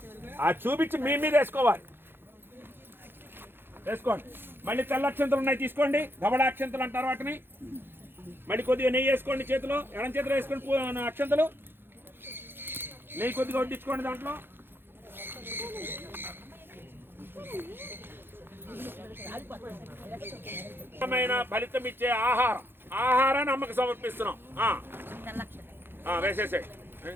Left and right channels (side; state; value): left; late; 0.10 ms